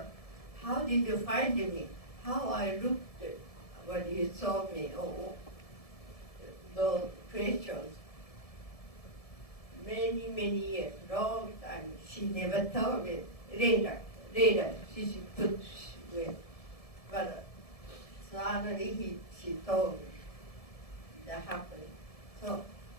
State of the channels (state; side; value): late; right; 1.7 ms